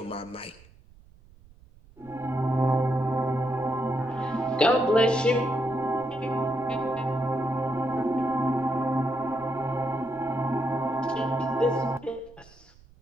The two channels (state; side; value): noise; right; rumble, 25 dB below the sound